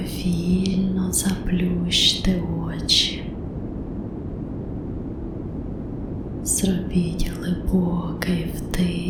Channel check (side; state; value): both; identical; correlation 1.00